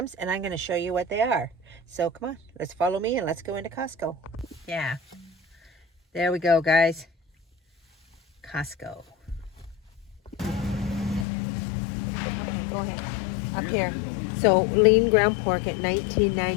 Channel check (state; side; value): drops out; right; at 11.2 s